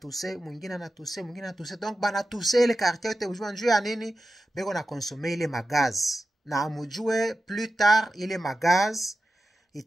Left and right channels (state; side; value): normal; both; correlation 0.93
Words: mwingine na tuse, mwingine na tuse. Donc bana tuse ile quartier yote ujua njuu ya nini? Beko na consommer ile magaz. Na amujue plus tard ile magaz